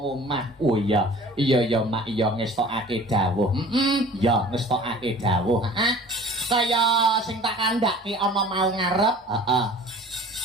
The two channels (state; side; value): normal; both; correlation 0.45